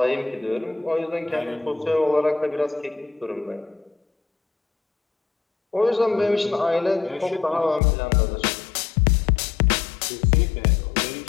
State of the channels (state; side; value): drops out; right; at 7.8 s